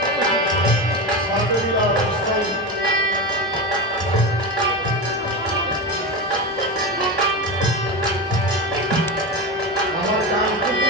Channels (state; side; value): normal; both; correlation 0.20